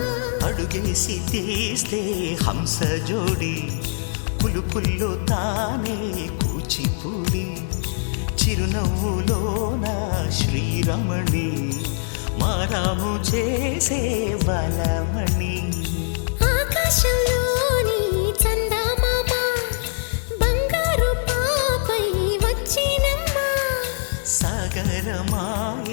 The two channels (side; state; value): right; silent; digital silence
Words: అడుగేసి తీస్తే హంస జోడి, పులుపుల్లో తానే కూచిపూడి, చిరునవ్వులోన శ్రీరమణి, మారాము చేసే బలమణి. ఆకాశంలోని చందమామ బంగారు పాపై వచ్చినమ్మా,